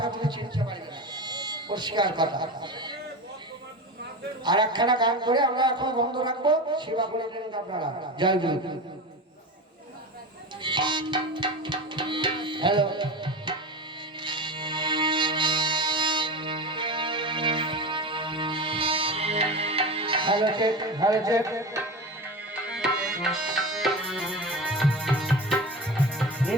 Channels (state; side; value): normal; both; correlation 0.26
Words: তুমি চিনতে পারবে না। পরিষ্কার কথা। আর একখানা গান করে আমরা এখন বন্ধ রাখবো, সেবা করে নেবেন আপনারা। জয় গুরু। Hello hello check, hello check.